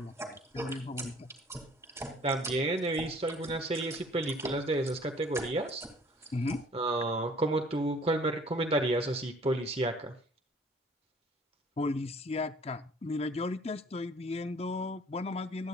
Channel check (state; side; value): normal; both; correlation 0.54